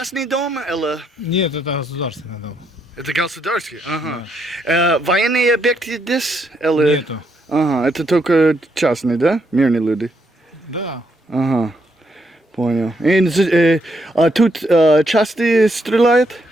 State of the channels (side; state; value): both; normal; correlation 0.76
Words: дом или? Нет, это государственный дом. Это государственный? Ага. Военные объекты здесь? Или? Нету. Ага, это только частные, да? Мирные люди? Да. Ага, понял. А тут часто стреляют?